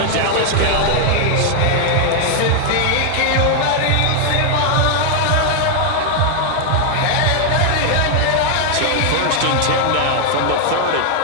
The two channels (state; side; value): different; both; correlation 0.00